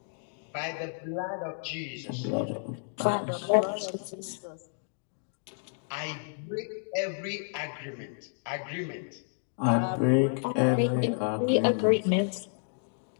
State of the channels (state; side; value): silent; right; digital silence